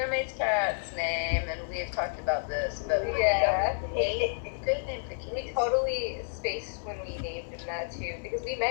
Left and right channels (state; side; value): silent; right; 58 dB below the other